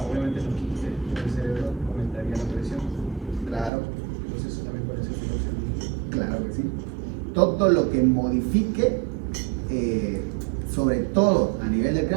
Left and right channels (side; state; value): left; drops out; at 3.7 s